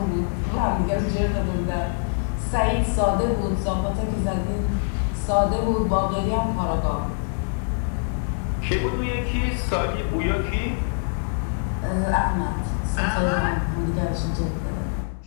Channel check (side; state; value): right; silent; digital silence